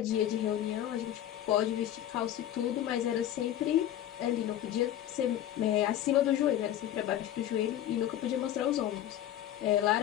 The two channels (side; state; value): right; quieter; 11.8 dB